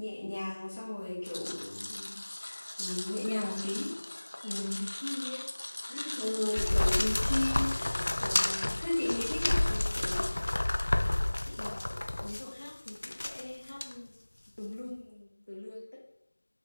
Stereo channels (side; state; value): both; inverted; correlation -1.00